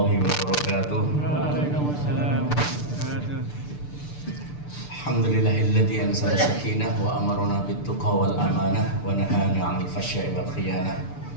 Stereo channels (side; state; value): right; late; 6.8 ms